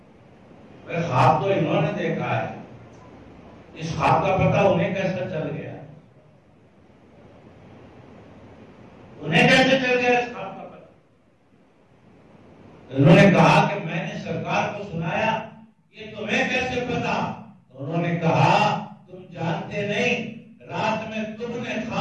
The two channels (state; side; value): identical; both; correlation 1.00